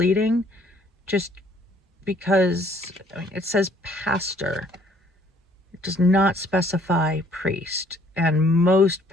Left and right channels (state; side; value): normal; both; correlation 0.61